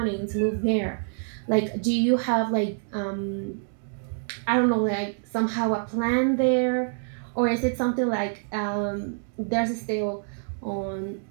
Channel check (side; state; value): left; silent; 61 dB below the other